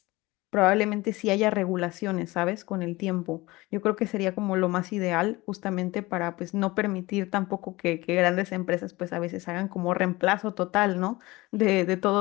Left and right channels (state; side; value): quieter; right; 21.0 dB